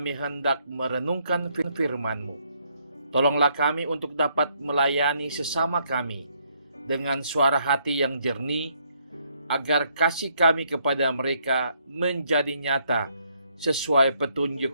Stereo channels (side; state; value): both; inverted; correlation -0.71